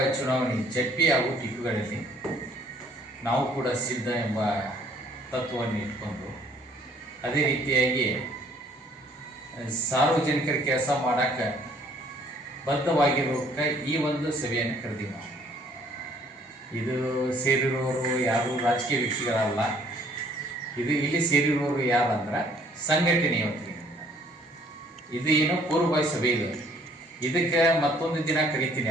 ಚುನಾವಣೆ ಜಡ್ಪಿ ಹಾಗೂ ಟಿಪ್ಪುಗಳಲ್ಲಿ ನಾವು ಕೂಡ ಸಿದ್ಧ ಎಂಬ ತತ್ವವನ್ನು ಇಟ್ಕೊಂಡು ಅದೇ ರೀತಿಯಾಗಿ ಸಾರ್ವಜನಿಕರ ಕೆಲಸ ಮಾಡೋಕ್ಕೆ ಬದ್ಧವಾಗಿರೋಕ್ಕೆ ಈ ಒಂದು ಸಭೆಯನ್ನು ಕರೆದೀವಿ ನಾವು. ಇದು ಸೇರಿರೋರು ಯಾರು ರಾಜಕೀಯ ವ್ಯಕ್ತಿಗಳಲ್ಲ. ಇದು ಇಲ್ಲಿ ಸೇರಿರೋರು ಯಾರಂದ್ರೆ ಸಂಘಟನೆಯ ವತಿಯಿಂದ. ಇದು ಏನು ಪೂರ್ವಭಾವಿ ಸಭೆ ಇದು. ಇದಕ್ಕೆ ಮತ್ತೊಂದು ದಿನ ಕರಿತೀನಿ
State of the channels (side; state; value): both; normal; correlation 0.60